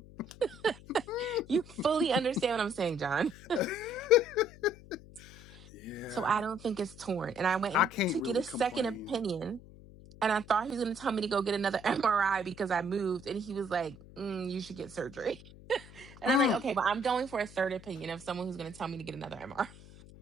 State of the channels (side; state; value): left; noise; hum, 19 dB below the sound